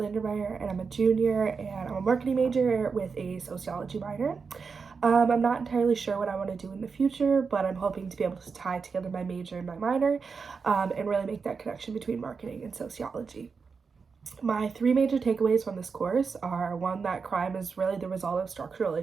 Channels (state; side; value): quieter; left; 5.2 dB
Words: and I'm a junior and I'm a marketing major with a sociology minor. I'm not entirely sure what I want to do in the future, but I'm hoping to be able to tie together my major and my minor and really make that connection between marketing and sociology. My three major takeaways from this course are one, that crime is really the result of structural